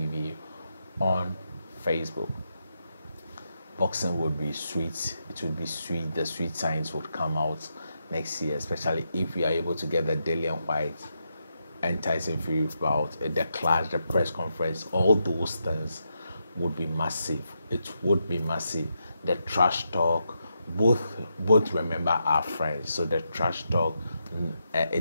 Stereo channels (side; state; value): both; inverted; correlation -0.83